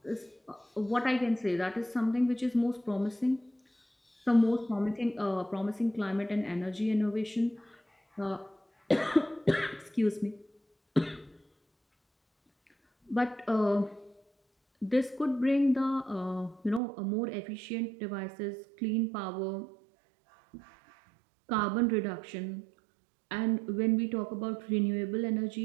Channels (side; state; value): left; drops out; at 16.8 s